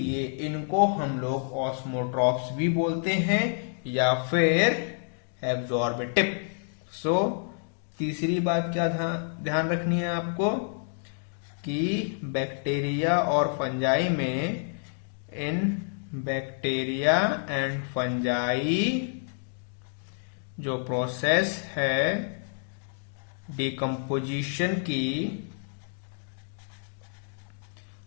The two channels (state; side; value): silent; right; digital silence